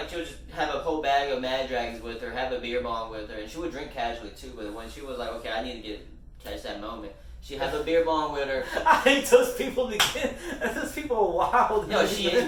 have a whole bag of Mad Dragons with her, have a beer bong with her, and she would drink casually too. But when she was like, okay, I need to catch that moment. She had a beer bong with her. I hate those people again. Those people are wild. No, she is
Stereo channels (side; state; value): both; identical; correlation 1.00